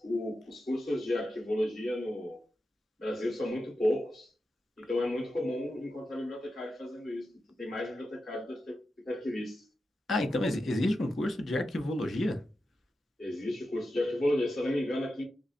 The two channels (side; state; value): both; normal; correlation 0.90